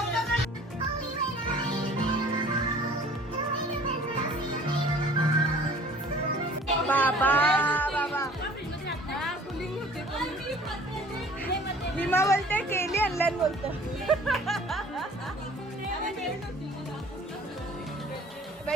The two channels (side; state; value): both; normal; correlation 0.50